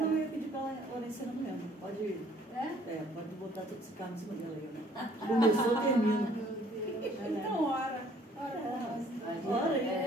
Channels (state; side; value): normal; both; correlation 0.58